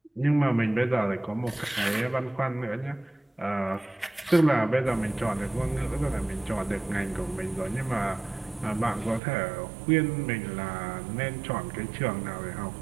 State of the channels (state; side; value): drops out; left; at 9.2 s